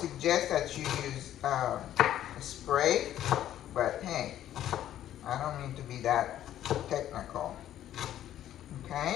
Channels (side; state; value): right; quieter; 11.9 dB